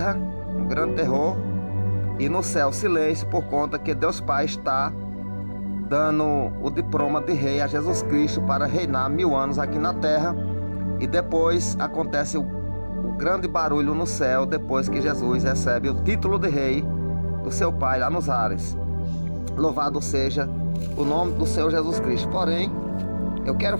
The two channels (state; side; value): inverted; both; correlation -1.00